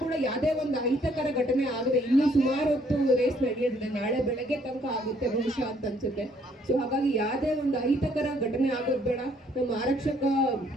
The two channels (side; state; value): both; normal; correlation 0.65